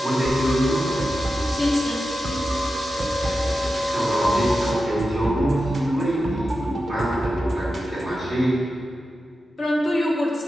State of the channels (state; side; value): normal; both; correlation 0.91